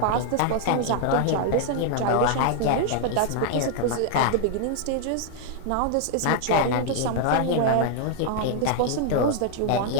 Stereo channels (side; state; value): both; different; correlation 0.00